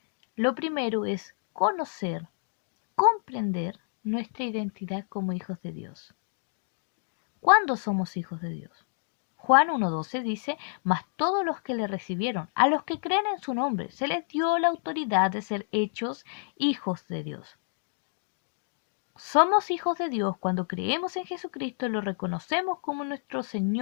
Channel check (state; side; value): silent; right; digital silence